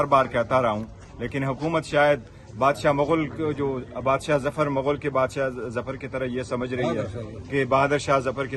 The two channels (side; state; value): both; identical; correlation 1.00